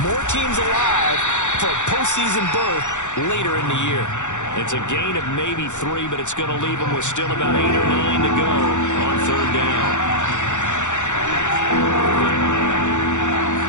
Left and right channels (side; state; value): right; late; 0.85 ms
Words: more teams alive for a postseason berth later in the year. It's a gain of maybe 3, but it's going to leave them with still about 8 or 9 to go on 3rd down.